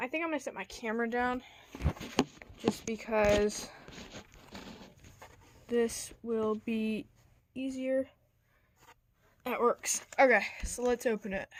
think I'm gonna set my camera down just because this will be easier. That works. Okay, so let's open it.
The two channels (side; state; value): both; identical; correlation 1.00